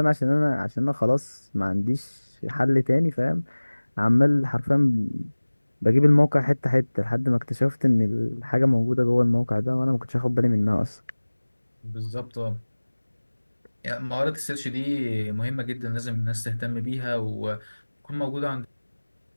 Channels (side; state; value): both; inverted; correlation -1.00